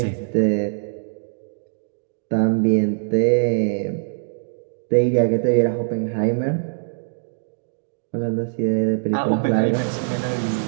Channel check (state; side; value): silent; left; digital silence